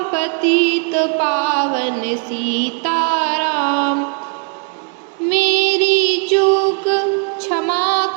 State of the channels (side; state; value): left; quieter; 37.9 dB